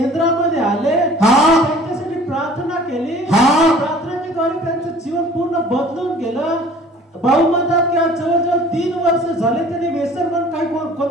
आले, त्यांच्यासाठी प्रार्थना केली. प्रार्थनेद्वारे त्यांचं जीवन पूर्ण बदलून गेलं. भाऊ म्हणतात की आज जवळजवळ 3 वर्ष झाले त्यांनी व्यसन म्हणून काही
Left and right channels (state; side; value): normal; both; correlation 0.49